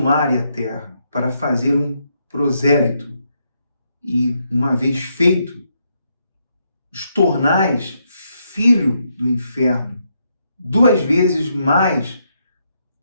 e a terra para fazer um prosélito, e, uma vez feito, os tornais filho do inferno, 2 vezes mais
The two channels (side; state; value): both; inverted; correlation -0.78